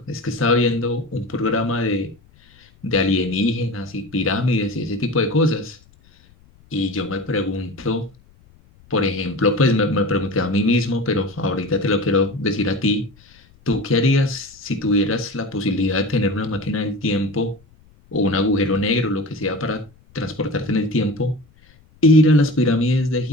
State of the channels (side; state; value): left; noise; rumble, 29 dB below the sound